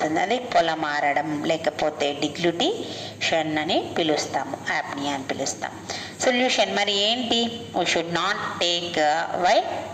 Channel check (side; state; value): both; identical; correlation 1.00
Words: అది పొలమారడం లేకపోతే డిగ్లుటిషన్ అని పిలుస్తాము, యాప్నియా అని పిలుస్తాం. సొల్యూషన్ మరి ఏంటి, we should not take while